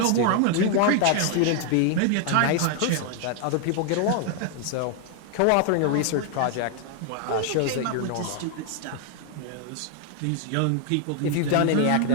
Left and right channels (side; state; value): both; different; correlation 0.00